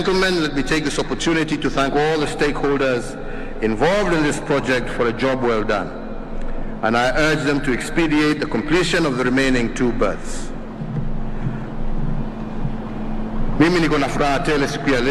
let me take this opportunity to thank all the stakeholders involved in this project for a job well done, and I urge them to expedite the completion of the remaining 2 berths. Mimi niko na furaha tele siku ya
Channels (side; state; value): both; identical; correlation 1.00